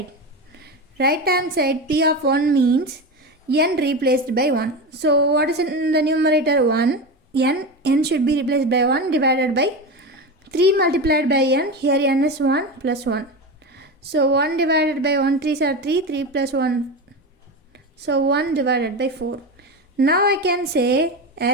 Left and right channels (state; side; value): normal; both; correlation 0.21